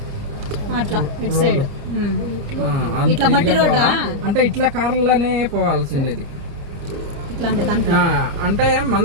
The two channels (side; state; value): left; late; 29 ms